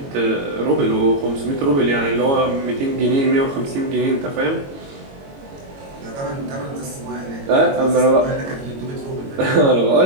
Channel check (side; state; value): left; late; 22 ms